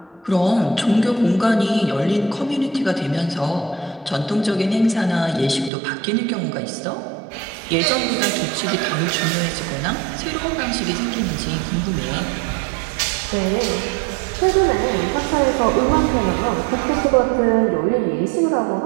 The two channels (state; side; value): drops out; left; at 5.7 s